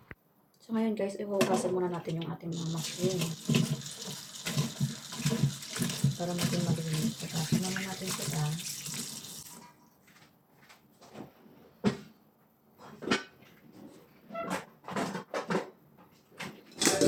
So, ngayon guys, ihugasan muna natin yung ating mga mushroom para maging malinis. So, simulan natin sila.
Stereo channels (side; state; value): both; identical; correlation 1.00